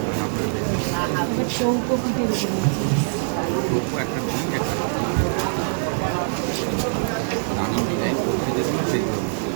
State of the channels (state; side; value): silent; left; 59 dB below the other